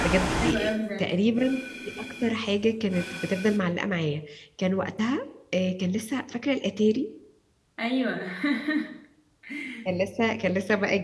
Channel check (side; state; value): both; identical; correlation 1.00